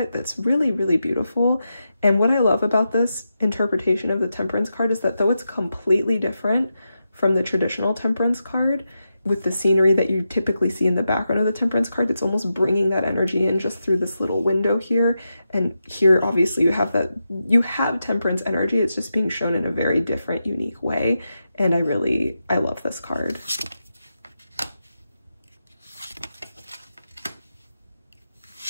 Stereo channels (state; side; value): inverted; both; correlation -0.88